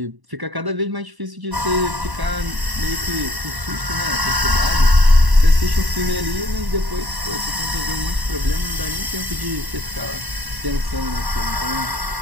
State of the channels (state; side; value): late; left; 1.0 ms